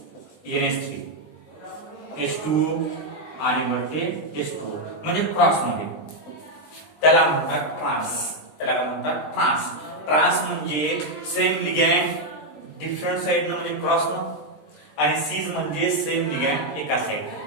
NH3 H2O आणि वरती H2O म्हणजे क्रॉस मध्ये त्याला म्हणतात ट्रान्स. ट्रान्स म्हणजे सेम लिगॅंड डिफरंट साइडनं म्हणजे क्रॉसनं आणि सीज म्हणजे सेम लिगॅंड एका साइड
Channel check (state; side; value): late; right; 20 ms